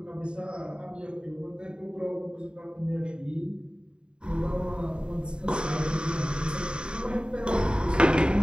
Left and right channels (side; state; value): left; late; 0.051 ms